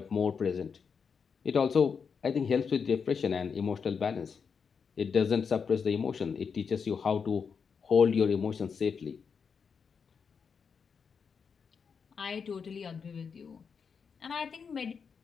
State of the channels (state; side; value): quieter; right; 6.1 dB